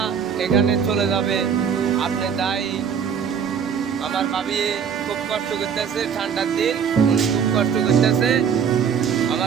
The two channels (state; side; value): quieter; left; 7.3 dB